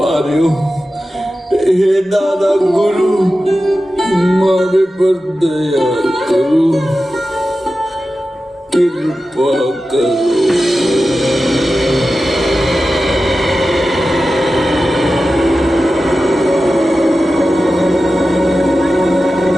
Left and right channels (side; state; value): both; normal; correlation 0.93